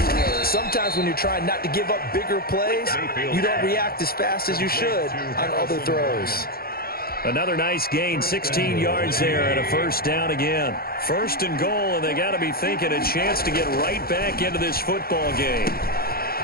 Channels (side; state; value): right; late; 0.44 ms